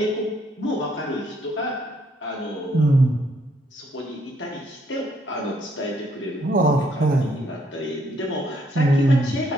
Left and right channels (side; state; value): both; normal; correlation 0.70